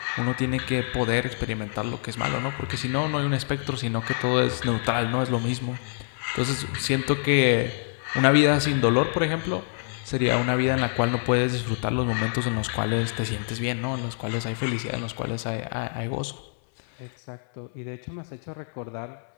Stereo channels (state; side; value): silent; right; 61 dB below the other